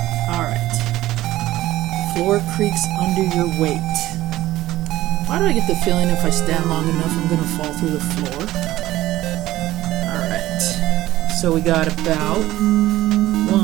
Alright. Floor creaks under your weight. Why do I get the feeling if I stand long enough I'm going to fall through the floor? Alright. So we got about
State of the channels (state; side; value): quieter; left; 15.7 dB